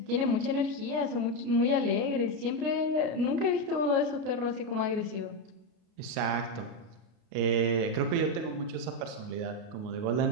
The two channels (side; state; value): left; late; 33 ms